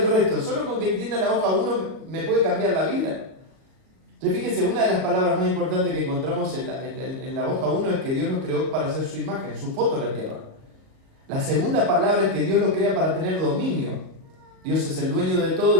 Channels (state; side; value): late; left; 37 ms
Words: resto, solo con que entienda la hoja 1 me puede cambiar la vida. Entonces fíjense, una de las palabras más importantes que encontramos en la hoja 1 es que Dios nos creó para hacer su imagen, su foto en la tierra. La segunda palabra es que Dios lo crea para tener dominio. Dios es el dueño de